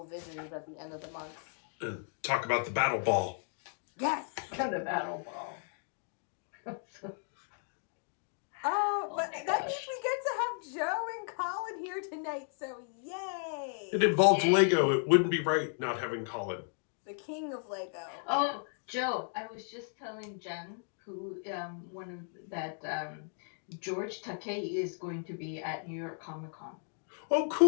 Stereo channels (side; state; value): right; silent; 55 dB below the other